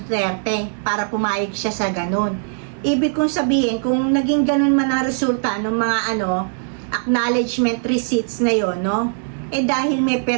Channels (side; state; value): left; silent; digital silence